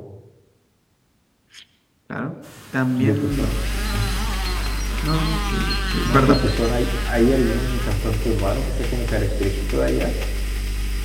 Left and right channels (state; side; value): identical; both; correlation 1.00